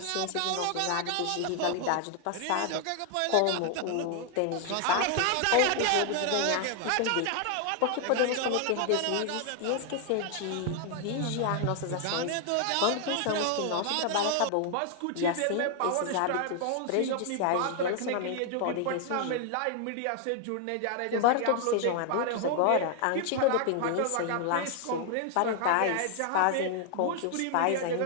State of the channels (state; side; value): different; both; correlation 0.00